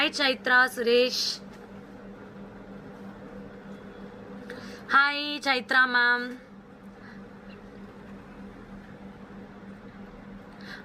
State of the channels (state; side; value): identical; both; correlation 1.00